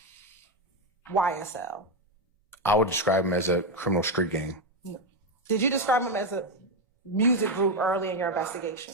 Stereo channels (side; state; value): both; normal; correlation 0.07